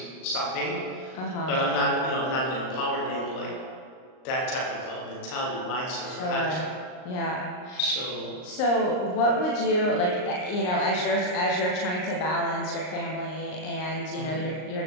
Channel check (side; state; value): right; late; 38 ms